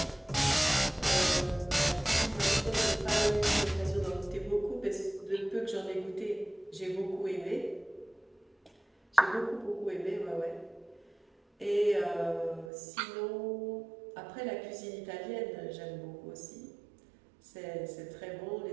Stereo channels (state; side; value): drops out; left; at 12.7 s